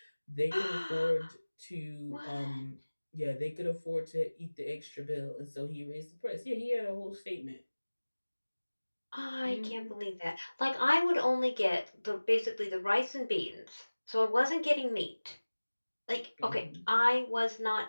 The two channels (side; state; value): both; inverted; correlation -1.00